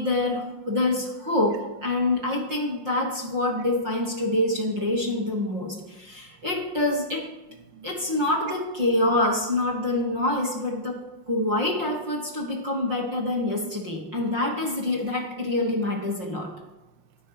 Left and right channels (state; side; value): late; left; 5.6 ms